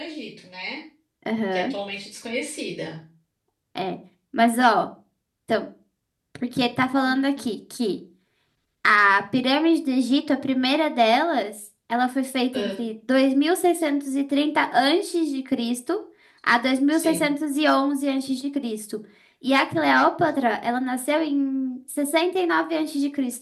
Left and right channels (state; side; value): identical; both; correlation 1.00